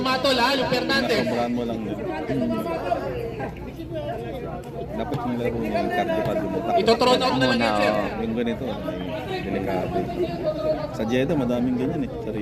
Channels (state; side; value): identical; both; correlation 1.00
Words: mamatol ha, yung Fernandez. Sobrahan mo lang yun. Dapat yung laro niya, yung cardio mo. Ito-thrown out na lang yan, sir. Yung ganito, may delikado. Sa Jeddah, madaming ganyan eh. Sa